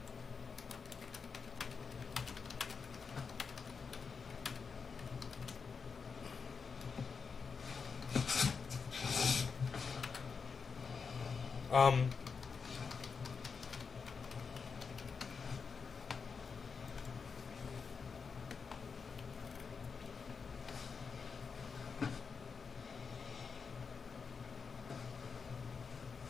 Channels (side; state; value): right; quieter; 5.5 dB